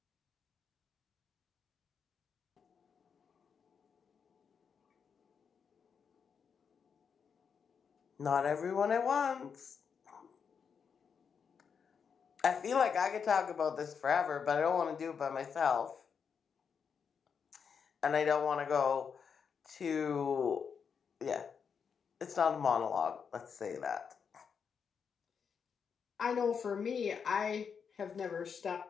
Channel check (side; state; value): right; quieter; 6.5 dB